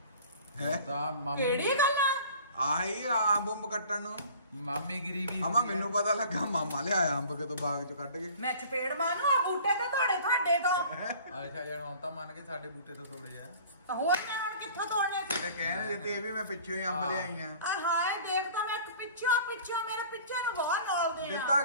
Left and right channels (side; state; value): both; inverted; correlation -0.46